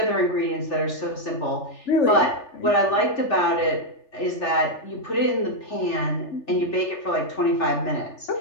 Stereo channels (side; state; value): right; late; 3.4 ms